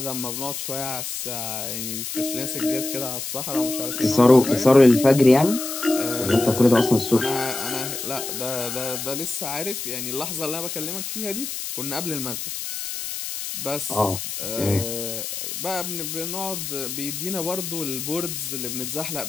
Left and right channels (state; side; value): noise; left; hiss, 5 dB below the sound